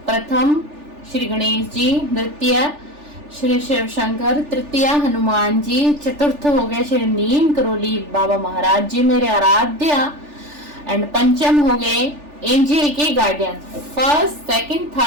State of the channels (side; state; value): left; late; 3.4 ms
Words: प्रथम श्री गणेश जी, द्वितीय श्री शिव शंकर, तृतीय हनुमान जी, चतुर्थ हो गए श्री नीम करोली बाबा महाराज जी मेरे आराध्य, एंड पंचम हो गए एंजल के guardian. First, second,